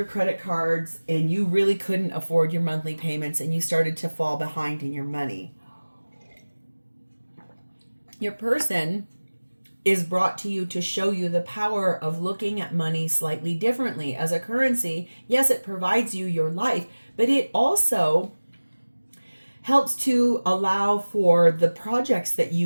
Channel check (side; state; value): both; inverted; correlation -1.00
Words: credit cards and you really couldn't afford your monthly payments and you started to fall behind in your money. Your person is brought to you to show you the power of looking at money slightly differently. As a currency, yes, it provides you your life, but it also helps to allow for the projects that